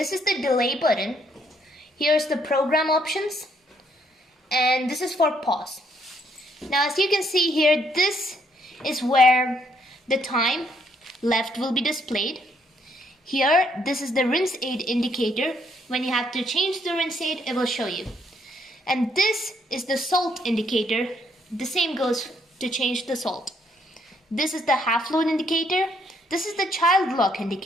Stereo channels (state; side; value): normal; both; correlation 0.70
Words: is the delay button. Here's the program options. And this is for pause. Now as you can see here, this is where the time left will be displayed. Here, this is the rinse aid indicator. When you have to change the rinse aid, it will show you. And this is the salt indicator. The same goes to change the salt. This is the half load indicator. This is the child lock